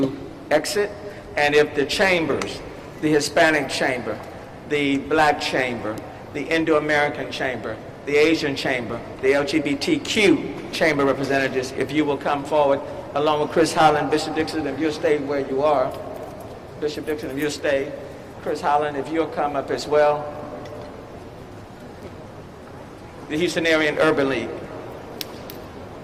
exit, and if the chambers, the Hispanic chamber, the Black chamber, the Indo-American chamber, the Asian chamber, the LGBTQ chamber representatives, if you will come forward, along with Chris Holland, Bishop Dixon, if you'll stay where you are. Bishop Dixon, if you'll stay. Chris Holland, if you'll come up as well. The Houstonian Urban League.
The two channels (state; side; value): identical; both; correlation 1.00